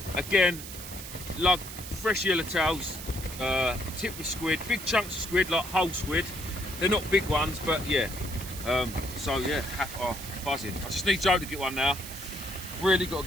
Again, lug, fresh yellowtails, tipped with squid, big chunks of squid, like whole squid. They're not big ones, but yeah. So yeah, buzzing. I just need Joe to get one now. Really got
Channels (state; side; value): noise; right; hiss, 11 dB below the sound